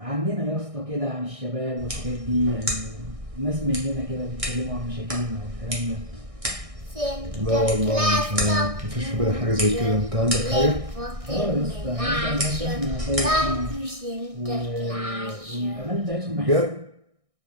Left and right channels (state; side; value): late; left; 1.6 ms